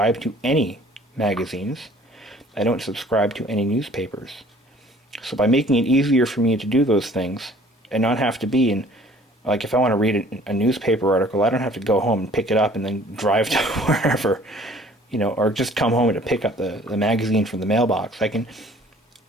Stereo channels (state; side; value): normal; both; correlation 0.53